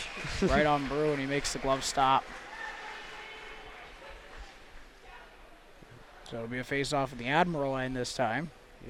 Right on Brew, and he makes the glove stop. So it'll be a face-off at the Admiral end this time.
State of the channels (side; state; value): both; identical; correlation 1.00